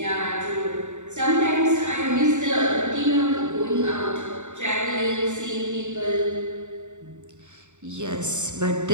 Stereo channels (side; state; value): left; late; 0.84 ms